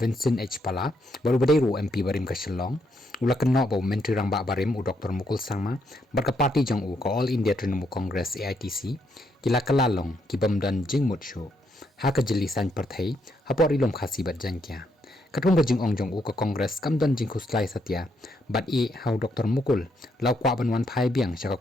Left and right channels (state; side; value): normal; both; correlation 0.76